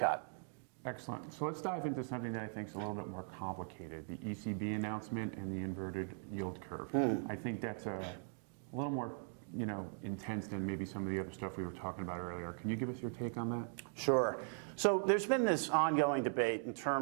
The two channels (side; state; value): left; silent; 51 dB below the other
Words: Excellent. So let's dive into something that I think is a little bit more complicated, the ECB announcement and the inverted yield curve. I think that's a little more intense than maybe some of the other stuff we were talking about earlier. Can you give us your take on that? Sure. So there's been this ongoing debate in